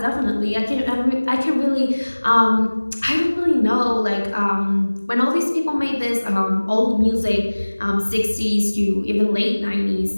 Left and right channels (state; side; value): inverted; both; correlation -1.00